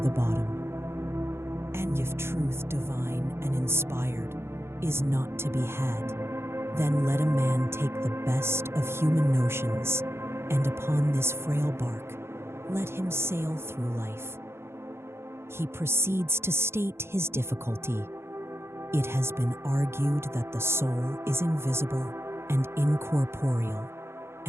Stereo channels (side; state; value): left; late; 0.12 ms